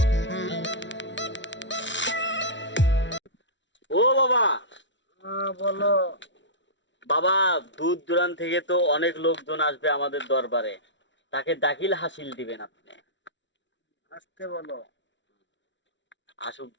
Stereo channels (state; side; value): late; right; 0.54 ms